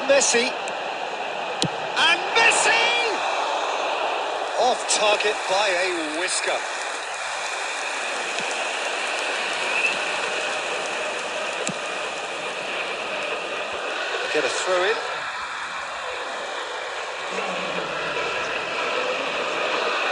And Messi! Off target by a whisker. Get a throw in.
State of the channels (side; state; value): both; identical; correlation 1.00